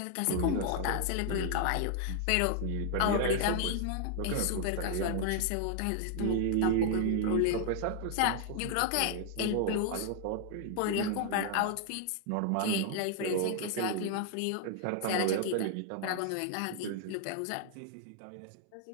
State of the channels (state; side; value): different; both; correlation 0.00